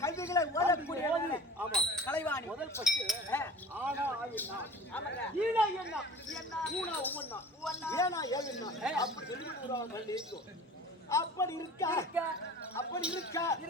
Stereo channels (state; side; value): normal; both; correlation 0.41